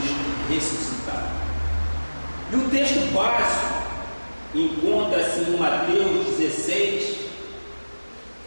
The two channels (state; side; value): inverted; both; correlation -1.00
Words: ressuscitado. E o texto básico encontra-se em Mateus 16,